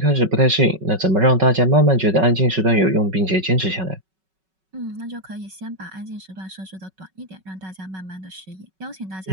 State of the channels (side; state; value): left; late; 5.3 ms